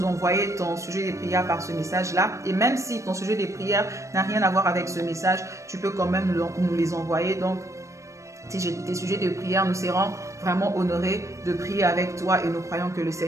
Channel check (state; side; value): late; left; 0.15 ms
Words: envoyer ton sujet de prière par ce message-là. Et même si ton sujet de prière n'a rien à voir avec ce message, tu peux quand même nous les envoyer. Donc, tes sujets de prière, nous serons vraiment honorés de prier avec toi et nous croyons que le